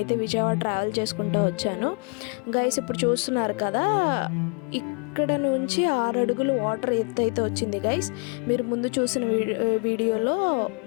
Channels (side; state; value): right; quieter; 36.2 dB